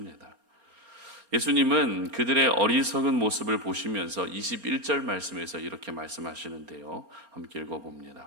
예수님은 그들의 어리석은 모습을 보시면서 21절 말씀에서 이렇게 말씀하시는데요. 함께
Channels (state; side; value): late; left; 4.3 ms